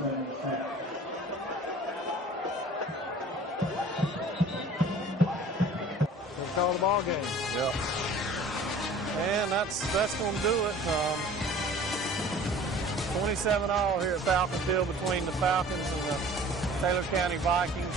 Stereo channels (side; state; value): both; normal; correlation 0.46